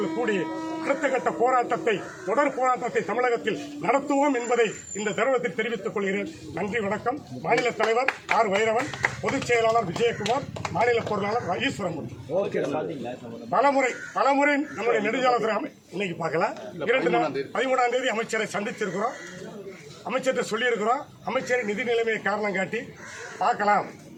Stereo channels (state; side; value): identical; both; correlation 1.00